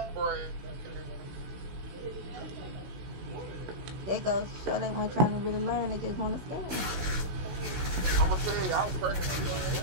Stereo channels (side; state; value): left; late; 16 ms